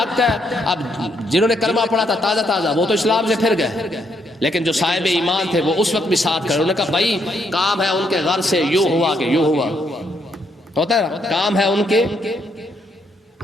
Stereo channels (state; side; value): normal; both; correlation 0.74